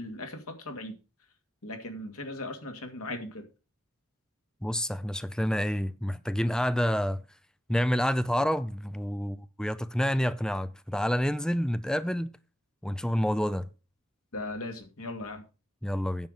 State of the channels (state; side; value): normal; both; correlation 0.91